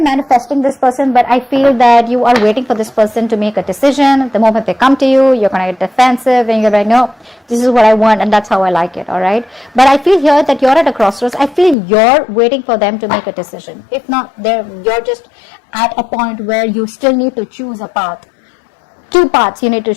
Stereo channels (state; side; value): drops out; right; at 11.8 s